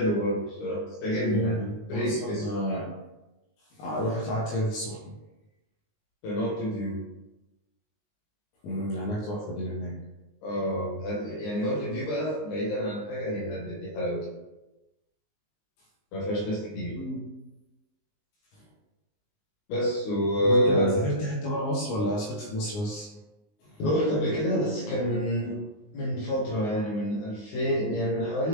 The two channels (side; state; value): right; late; 19 ms